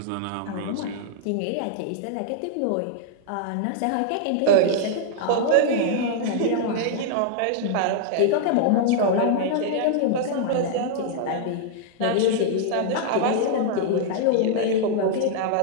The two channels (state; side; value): different; both; correlation -0.01